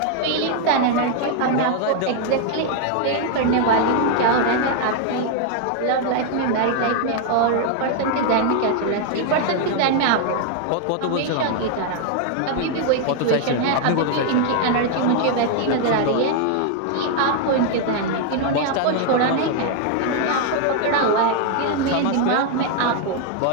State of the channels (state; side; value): different; both; correlation 0.00